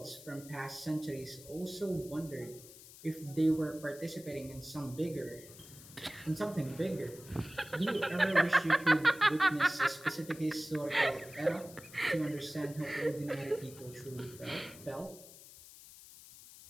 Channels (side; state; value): left; noise; hiss, 18 dB below the sound